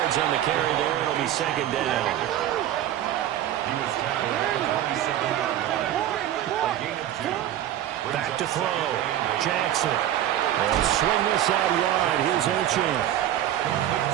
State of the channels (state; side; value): quieter; left; 12.0 dB